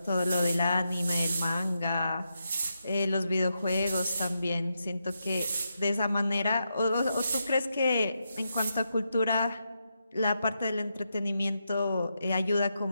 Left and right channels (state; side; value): inverted; both; correlation -0.84